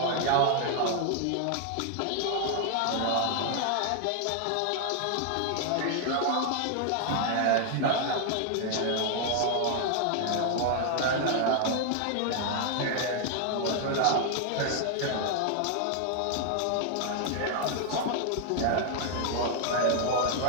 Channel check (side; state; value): both; different; correlation 0.00